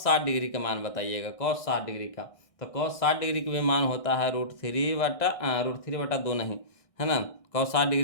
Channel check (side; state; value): right; late; 1.6 ms